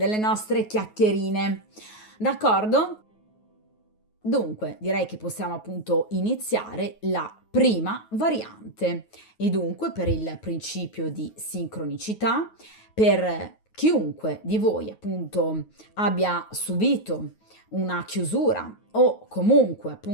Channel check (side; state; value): right; late; 9.4 ms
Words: nostre chiacchierine. D'accordo? Dunque, direi che possiamo appunto iniziare la prima variante e dunque per il principio di sincronicità, per chiunque di voi appunto abbia subito una chiusura o comunque